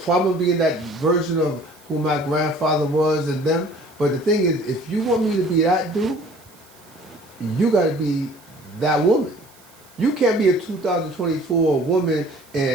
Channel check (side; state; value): right; noise; hiss, 27 dB below the sound